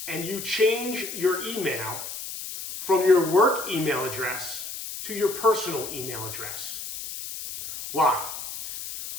and you change your email from your work email address to your personal email address. Why?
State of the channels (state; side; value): noise; left; hiss, 8 dB below the sound